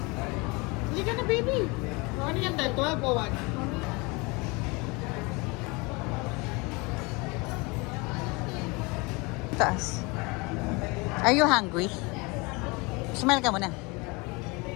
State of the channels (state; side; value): quieter; right; 26.8 dB